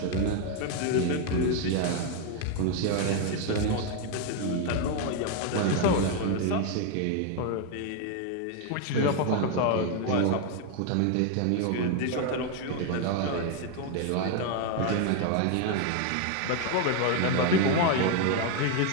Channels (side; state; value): both; different; correlation 0.01